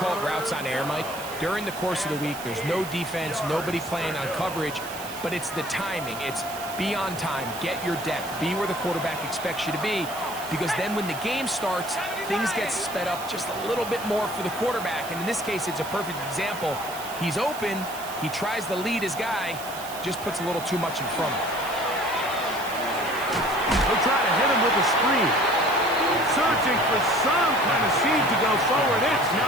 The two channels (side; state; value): right; noise; hiss, 13 dB below the sound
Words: it routes on air, Mike. During the course of the week, there's no defense, nobody playing on coverage, but it's the timing. It's be on time, get your depth, be where the quarterback expects you to be, because then when the game starts, things get sped up just a little bit more for the quarterback. And in this case, it's a perfect example. He's open, he tries to lead his guy, just puts a little too much in front of him. They'll try to hit him with a screen. Searching for some kind of seed to go forward. It's